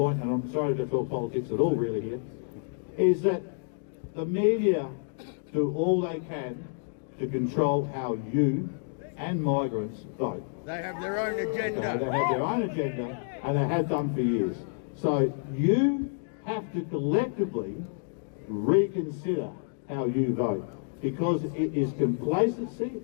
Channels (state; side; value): silent; right; digital silence